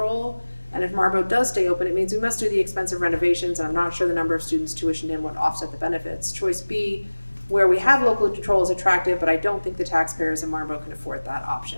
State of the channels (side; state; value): both; inverted; correlation -1.00